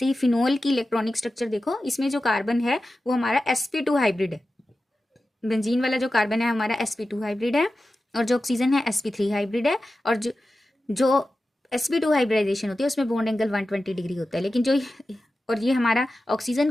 ही फिनोल की इलेक्ट्रॉनिक स्ट्रक्चर देखो। इसमें जो कार्बन है वो हमारा sp2 हाइब्रिड है। बेंजीन वाला जो कार्बन है हमारा sp2 हाइब्रिड है, और जो ऑक्सीजन है sp3 हाइब्रिड है। और जो sp2 हाइब्रिडाइजेशन होती है उसमें बॉन्ड एंगल 120 डिग्री होता है। लेकिन और ये हमारा ऑक्सीजन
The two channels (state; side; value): normal; both; correlation 0.94